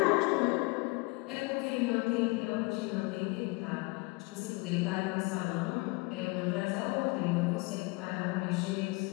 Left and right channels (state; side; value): quieter; right; 26.3 dB